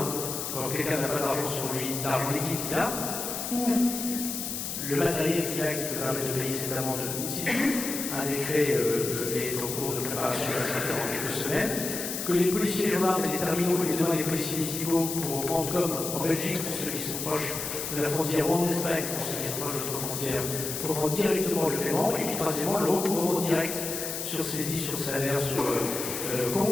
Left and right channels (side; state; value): left; noise; hiss, 4 dB below the sound